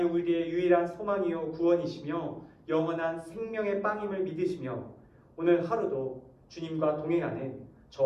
우리의 유일한 소망이요 구원이시며 영원한 생명의 빵임을 믿으시며 오늘 하루도 주님과 동행하는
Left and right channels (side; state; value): both; identical; correlation 1.00